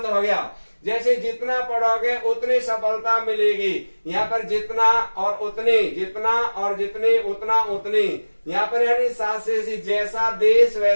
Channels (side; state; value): both; inverted; correlation -1.00